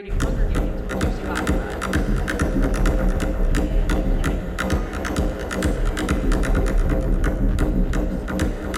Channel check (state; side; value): identical; both; correlation 1.00